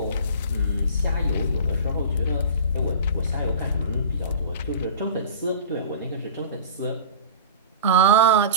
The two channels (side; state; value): both; inverted; correlation -0.35